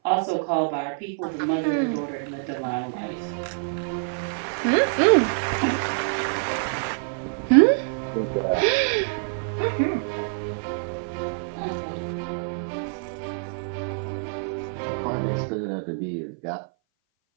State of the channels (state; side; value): silent; left; 57 dB below the other